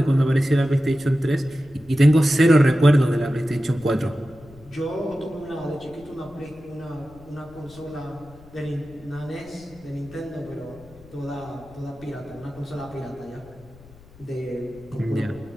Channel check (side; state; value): left; noise; rumble, 23 dB below the sound